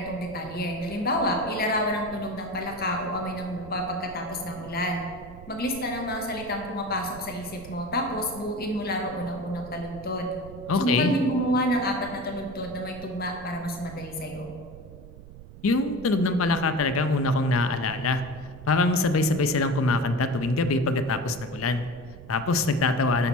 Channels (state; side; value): noise; right; rumble, 16 dB below the sound